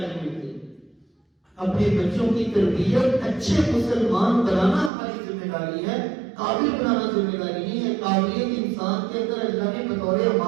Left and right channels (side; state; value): left; drops out; at 4.9 s